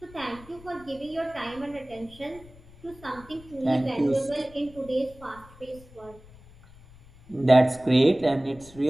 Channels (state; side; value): noise; left; rumble, 22 dB below the sound